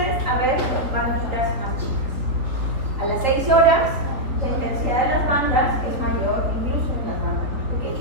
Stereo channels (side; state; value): left; late; 3.8 ms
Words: a ver banditas más chicas. A las 6 horas la intensidad de las bandas es mayor, incluso en las bandas más